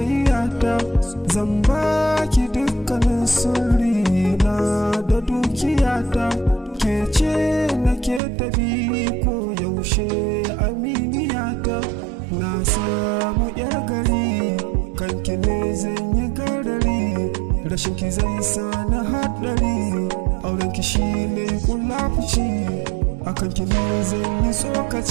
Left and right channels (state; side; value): drops out; left; at 8.2 s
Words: zan baki dukkanin sirri na da dukiyata, ke ce nake tabi ko yaushe aminiyata. Na samu yar gari kanki ne zan yi garari, rashin ki zai sa na haɗari, aurenki shi ne kulafuci, akan ki ne zan yi